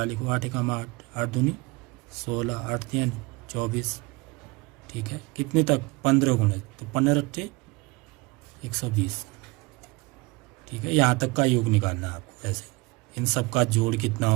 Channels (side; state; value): left; quieter; 24.6 dB